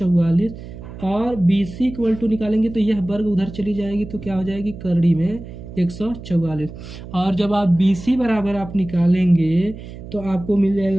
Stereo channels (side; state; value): right; noise; hum, 13 dB below the sound